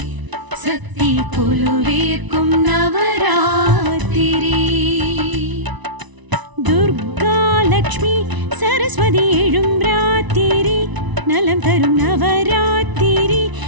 சக்தி கொலுவேற்கும் நவராத்திரி துர்கா லக்ஷ்மி சரஸ்வதி எழும் ராத்திரி நலம் தரும் நவராத்திரி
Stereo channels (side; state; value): left; late; 1.0 ms